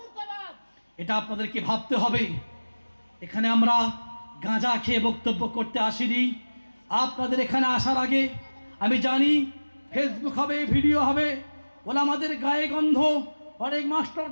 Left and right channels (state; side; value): inverted; both; correlation -1.00